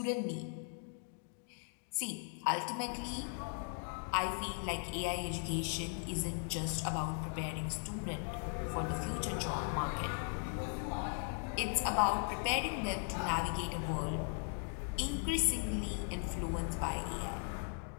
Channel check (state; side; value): silent; right; 52 dB below the other